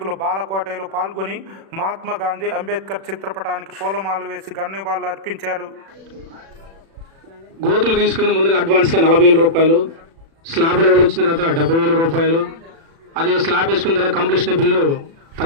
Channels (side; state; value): left; late; 36 ms